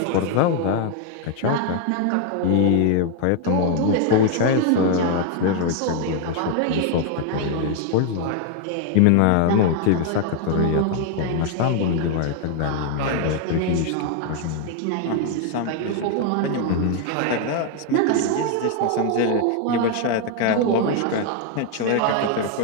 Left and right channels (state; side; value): different; both; correlation 0.00